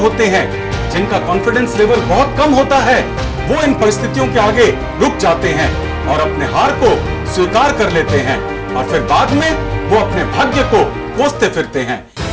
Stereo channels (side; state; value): both; identical; correlation 1.00